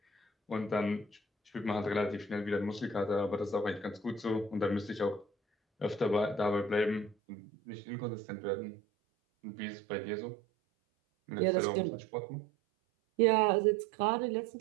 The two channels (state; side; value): drops out; left; at 7.2 s